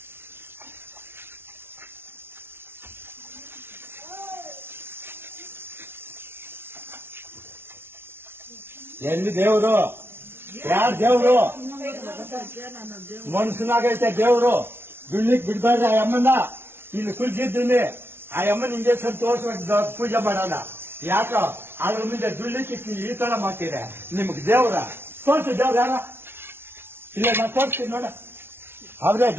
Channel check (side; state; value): left; late; 0.11 ms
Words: ಎಲ್ಲಿ ದೇವ್ರು? ಯಾರ್ ದೇವ್ರು? ಮನ್ಸನಾಗೈತೆ ದೇವ್ರು. ದುಡ್ಲಿಕ್ ಬಿಡ್ಬಾರ್ದು ಆ ಅಮ್ಮನ. ಇಲ್ಲಿ ಕುಲ್ಸಿದ್ದೀನಿ ಆ ಅಮ್ಮನ ಇಂಜೆಕ್ಷನ್ ತೋರ್ಸ್ಬೇಕು, ಪೂಜೆ ಮಾಡೋಣ. ಯಾಕ ಅದ್ರ ಮುಂದೆ ದುಡ್ಲಿಕ್ಕೆ ಈ ತರ ಮಾಡ್ತೀರ? ನಿಮ್ಗೆ ದೇವ್ರ ತೋರ್ಸಿ, ದೇವ್ರ ಯಾರ? ಇಲ್ಲ ನಾ ತೋರಿಸ್ತೀನಿ ನೋಡ, ಅವ್ರೇ